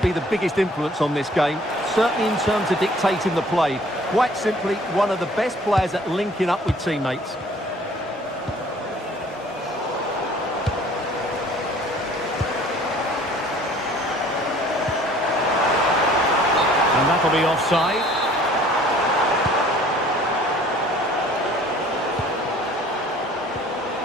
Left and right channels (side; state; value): both; normal; correlation 0.53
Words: be the biggest influence on this game, certainly in terms of dictating the play. Quite simply, one of the best players at linking up with teammates. And that'll be offside.